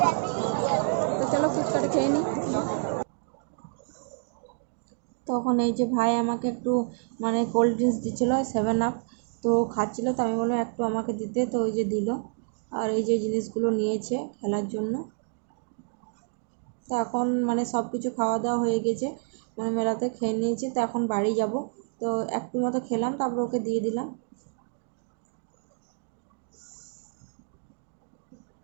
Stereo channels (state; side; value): silent; left; digital silence